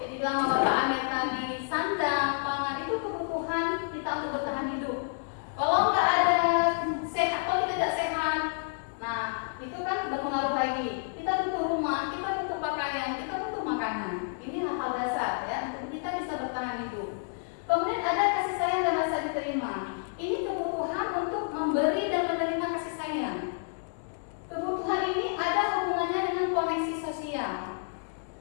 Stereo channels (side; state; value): right; silent; digital silence